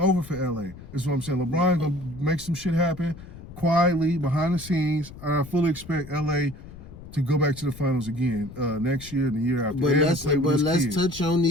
for LA. That's what I'm saying. LeBron gonna make some shit happen quietly behind the scenes. I fully expect LA to go back to the finals again next year and the year after. But let's touch on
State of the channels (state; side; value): noise; left; rumble, 16 dB below the sound